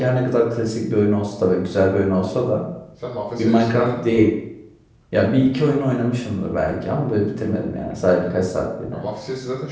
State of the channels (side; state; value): both; identical; correlation 1.00